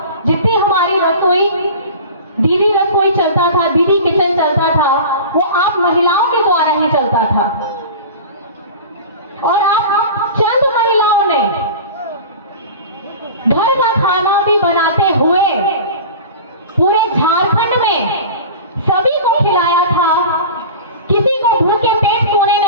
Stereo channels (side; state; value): both; inverted; correlation -0.35